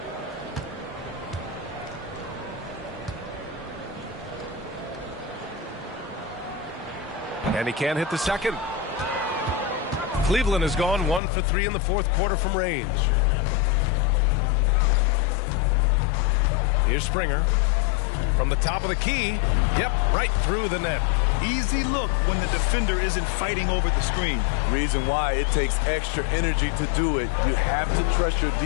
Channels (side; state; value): right; drops out; at 11.2 s